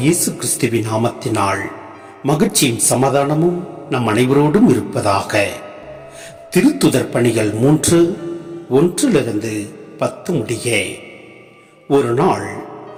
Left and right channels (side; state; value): both; identical; correlation 1.00